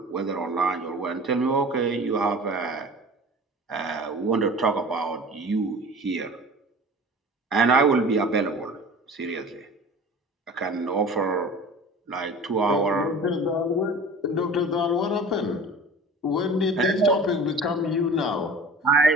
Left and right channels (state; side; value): normal; both; correlation 0.40